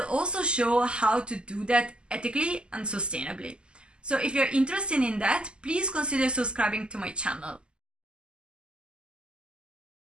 also show how to do that ethically and sustainably. So if you're interested in that, please consider subscribing to my channel.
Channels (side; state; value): left; late; 0.050 ms